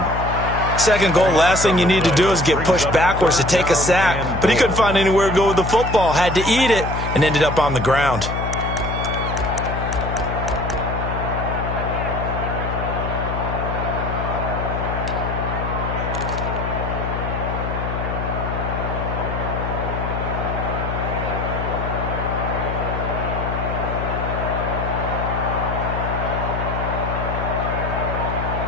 Second goal, last thing you need to do is get pushed backwards to take a sack. But he couldn't find anywhere to go with the football. Had to eat it and ended up on the ground.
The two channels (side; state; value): left; noise; hum, 4 dB below the sound